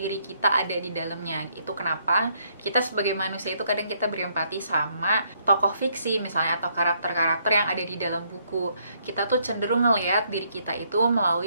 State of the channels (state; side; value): inverted; both; correlation -0.70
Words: kita ada di dalamnya. Itu kenapa kita sebagai manusia itu kadang kita berempati sama tokoh fiksi misalnya atau karakter-karakter yang ada di dalam buku. Kita tuh cenderung ngelihat diri kita itu